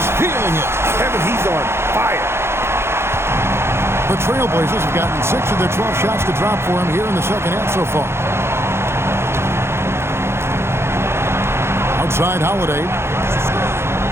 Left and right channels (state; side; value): late; left; 0.12 ms